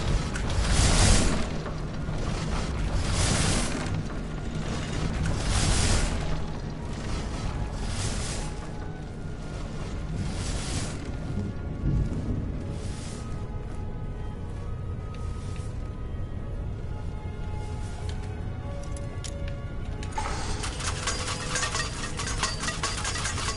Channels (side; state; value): both; identical; correlation 1.00